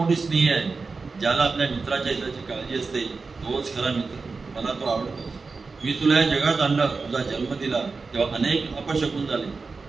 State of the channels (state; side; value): quieter; left; 4.3 dB